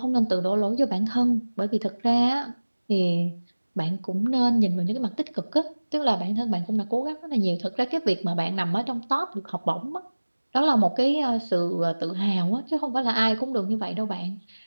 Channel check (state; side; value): inverted; both; correlation -1.00